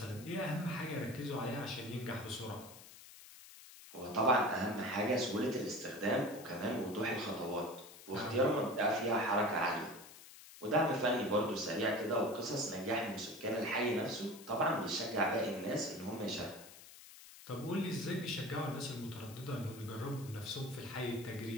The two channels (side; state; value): left; noise; hiss, 17 dB below the sound